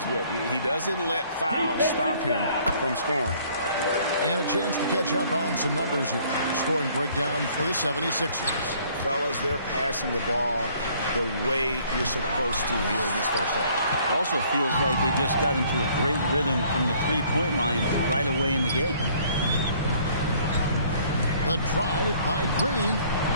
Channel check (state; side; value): inverted; both; correlation -0.59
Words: with. He doesn't let fouls stop him from scoring. And a chance to catch up on some numbers here. Scoring breakdown for the 76ers. Fellas, they're passing the ball the way you're supposed to here in this first half. Also feels like they just got into a great rhythm from the three-point line right away in the game. The drive by Green.